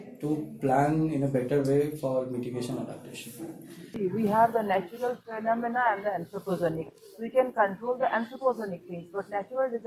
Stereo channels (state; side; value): identical; both; correlation 1.00